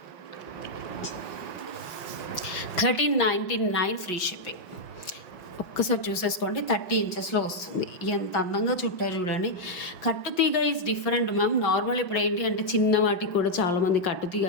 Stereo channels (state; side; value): late; right; 5.5 ms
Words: 1399 ఫ్రీ షిప్పింగ్. ఒక్కసారి చూసేసుకోండి, 30 ఇంచెస్లో వస్తుంది. ఎంత అందంగా చుట్టారు చూడండి. కట్టుతీగ ఈజ్ డిఫరెంట్ మ్యామ్. నార్మల్ ఇప్పుడు ఏంటి అంటే చిన్న వాటికి కూడా చాలామంది కట్టుతీగ